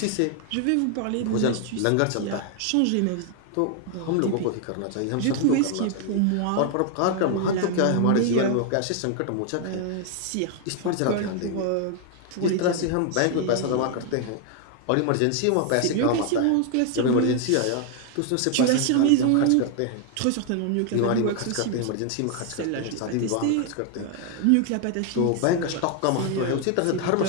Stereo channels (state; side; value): different; both; correlation 0.00